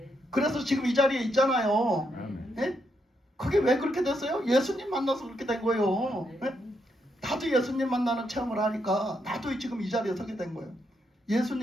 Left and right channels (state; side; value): normal; both; correlation 0.79